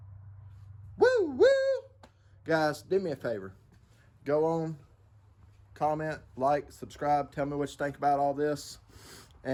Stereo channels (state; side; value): identical; both; correlation 1.00